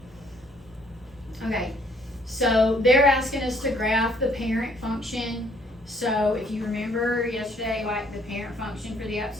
many. Okay, so they're asking us to graph the parent function. So if you remember yesterday, like the parent function for the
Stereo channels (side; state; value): both; normal; correlation 0.64